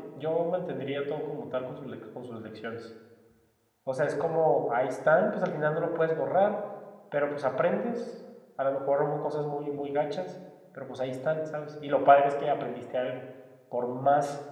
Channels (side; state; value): both; identical; correlation 1.00